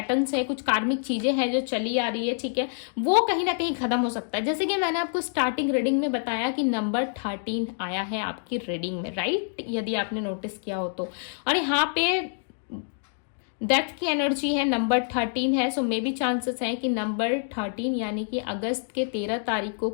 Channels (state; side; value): silent; right; digital silence